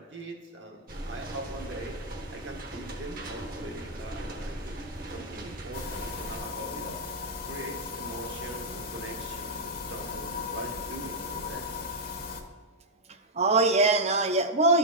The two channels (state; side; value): normal; both; correlation -0.04